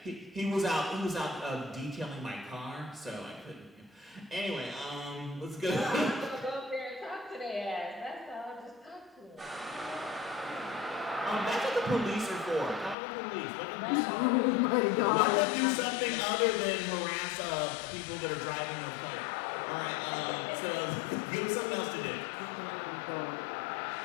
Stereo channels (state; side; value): drops out; right; at 13.0 s